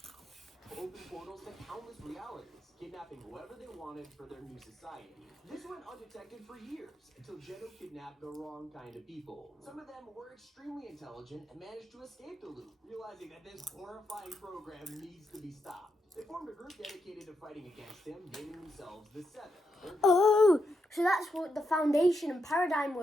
portals to countless realities, kidnapping whoever they wanted for their new society. This went undetected for years, until Geno kidnapped the wrong kind of people. Some of them were extremely intelligent and managed to escape the loop, realizing that this horrifying program needs to be stopped. They formed a group dedicated to fighting against him, naming themselves the Seven. Oh, so that's what the foundation and paradigm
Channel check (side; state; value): both; normal; correlation 0.82